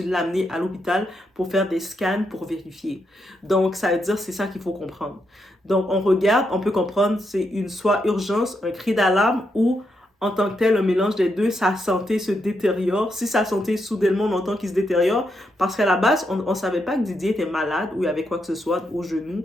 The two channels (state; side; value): normal; both; correlation 0.81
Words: l'amener à l'hôpital pour faire des scans pour vérifier. Donc, ça veut dire que c'est ça qu'il faut comprendre. Donc, on regarde, on peut comprendre, c'est soit urgence, un cri d'alarme ou en tant que tel, un mélange des deux, sa santé se détériore. Si sa santé, soudainement, on entend qu'il se détériore, parce qu'à la base, on ne savait pas que Didier était malade ou il y avait quoi que ce soit au genou.